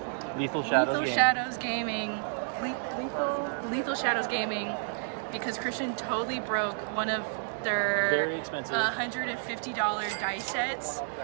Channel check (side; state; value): left; silent; 58 dB below the other